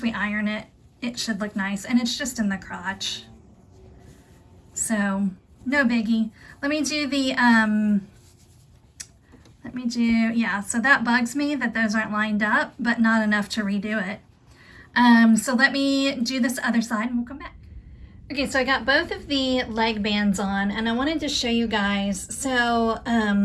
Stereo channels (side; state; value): both; identical; correlation 1.00